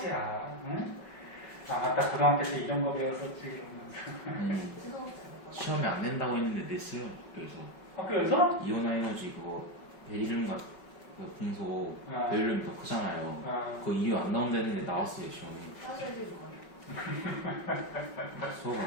응? 아 맞다 고등학교 때 이런 거 배웠었지 이러면서. 시험이 안 된다고 했는데 냈어요. 그래서 학교에서? 이온화 에너지 그거 베릴륨과 그 금속 아. 베릴륨이 더 크잖아요. 아, 그거 이유 안 나온다는데 나왔어요 시험이. 수업을 안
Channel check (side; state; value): right; late; 5.3 ms